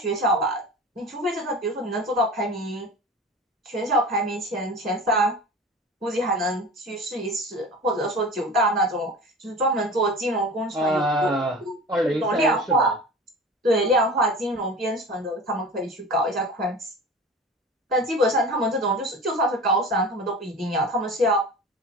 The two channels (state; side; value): normal; both; correlation 0.36